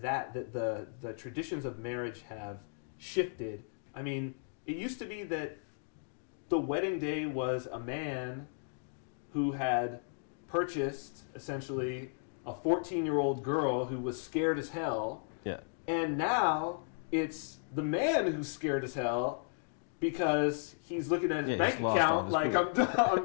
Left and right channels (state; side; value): silent; right; digital silence